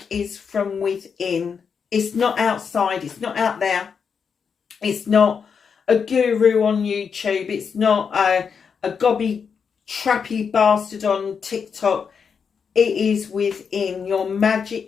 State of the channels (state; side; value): quieter; right; 6.3 dB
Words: is from within. It's not outside. It's not out there. It's not a guru on YouTube. It's not a gobby trappy bastard on TikTok. It is within. Your